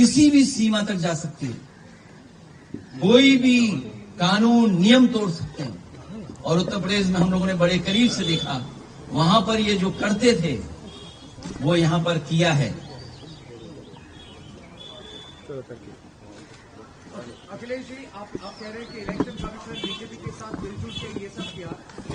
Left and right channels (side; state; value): both; identical; correlation 1.00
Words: भी सीमा तक जा सकती है, कोई भी कानून नियम तोड़ सकते हैं। और उत्तर प्रदेश में हम लोगों ने बड़े करीब से देखा, वहां पर ये जो करते थे वो यहां पर किया है। अखिलेश जी, आप कह रहे हैं कि इलेक्शन कमीशन बीजेपी के साथ मिलजुल के ये सब किया,